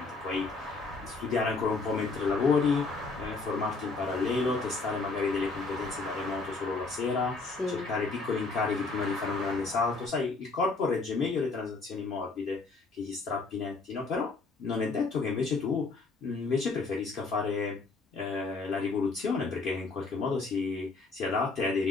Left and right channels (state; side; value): quieter; right; 4.0 dB